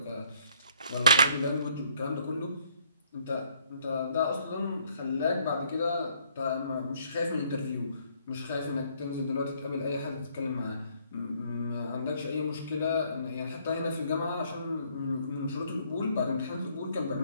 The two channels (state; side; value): inverted; both; correlation -0.65